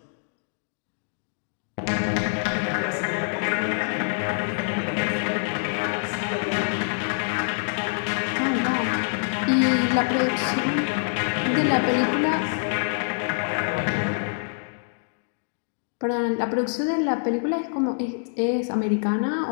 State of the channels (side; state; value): right; silent; digital silence